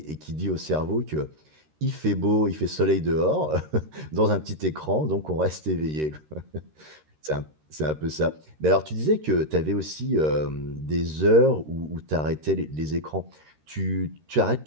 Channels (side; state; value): left; late; 13 ms